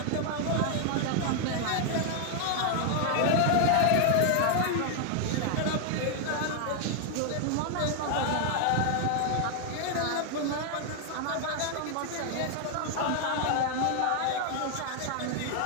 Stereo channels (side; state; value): both; different; correlation 0.00